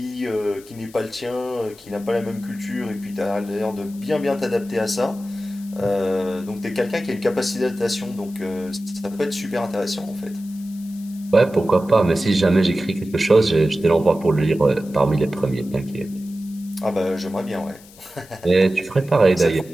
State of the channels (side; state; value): left; noise; hiss, 23 dB below the sound